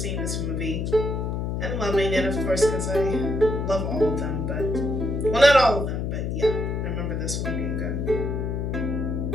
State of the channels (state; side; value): noise; left; hum, 1 dB below the sound